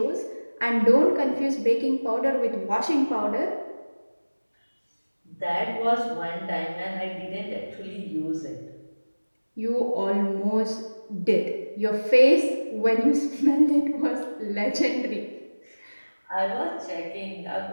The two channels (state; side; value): inverted; both; correlation -1.00